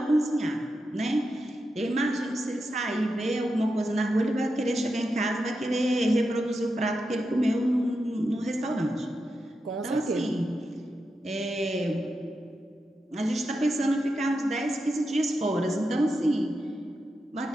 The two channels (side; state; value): both; normal; correlation 0.88